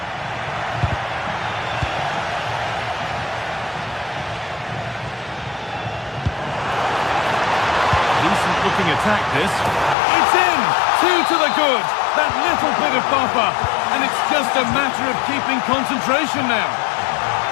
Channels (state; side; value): drops out; right; at 10.0 s